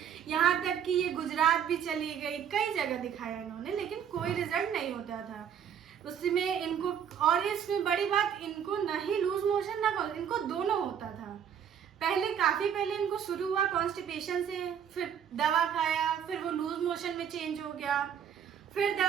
यहाँ तक कि ये गुजरात भी चली गई, कई जगह दिखाया इन्होंने, लेकिन कोई रिजल्ट नहीं होता था उसमें इनको। और इसमें बड़ी बात, इनको ना ही लूज मोशन ना इनको दोनों होता था। काफी पहले इनको शुरू हुआ कॉन्स्टिपेशन से, फिर दवा खाया, फिर वो लूज मोशन में चेंज हो गया, फिर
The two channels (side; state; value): left; quieter; 8.5 dB